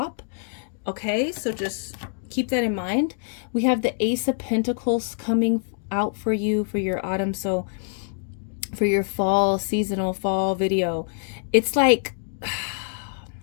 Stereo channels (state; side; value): silent; right; 62 dB below the other